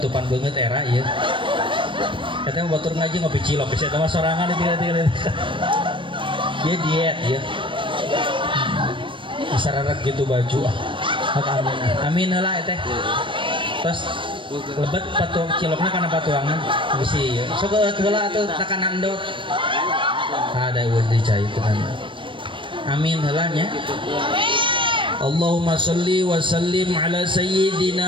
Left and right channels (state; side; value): late; left; 0.25 ms